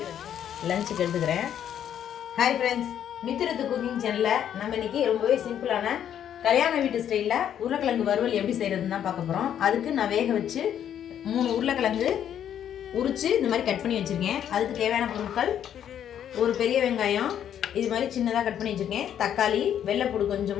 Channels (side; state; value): right; quieter; 9.7 dB